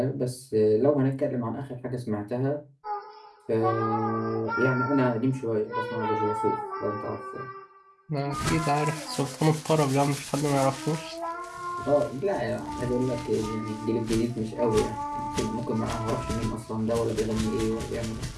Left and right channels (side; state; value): both; identical; correlation 1.00